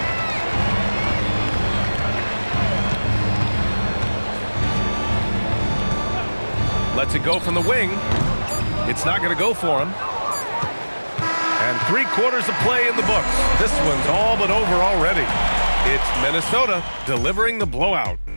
Lets it go from the wing. It's not going to go for him. And 3 quarters of play in the books. This one's all but over already. It's Minnesota delivering the blowout.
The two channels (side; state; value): both; inverted; correlation -1.00